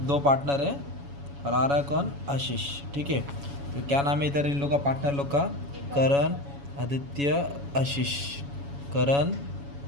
दो पार्टनर है और आरा कौन? आशीष। ठीक है। तो क्या नाम है इधर इन लोग का पार्टनर लोग का? करण, आदित्य, आशीष। करण,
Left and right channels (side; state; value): left; late; 7.1 ms